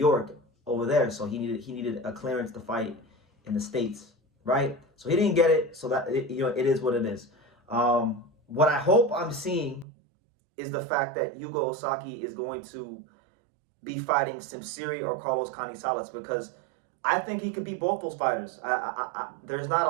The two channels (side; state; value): left; drops out; at 9.9 s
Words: over there. So he needed a clearance to fight in the States, right? So he didn't get it. So that it is what it is. What I hope I'm seeing is the fact that Yuga Ozaki is going to be fighting Simsiri or Carlos Canizales, because I think he could beat both those fighters. There's not a